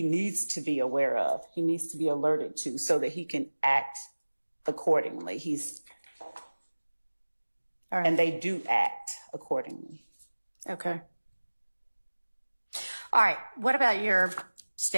needs to be aware of. He needs to be alerted to so that he can act accordingly. All right. And they do act accordingly. Okay. All right. What about your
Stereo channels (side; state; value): both; inverted; correlation -1.00